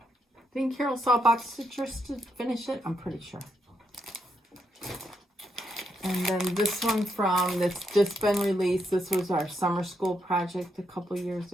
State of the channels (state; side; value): normal; both; correlation 0.79